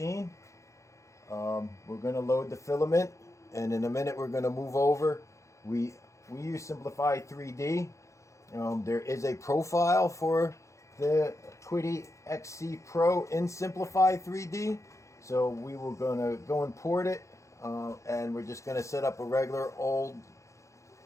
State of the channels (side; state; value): right; late; 0.15 ms